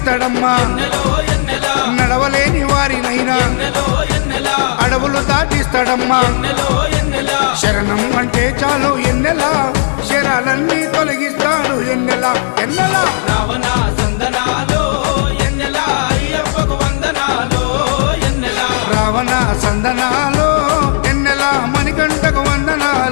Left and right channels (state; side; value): silent; right; digital silence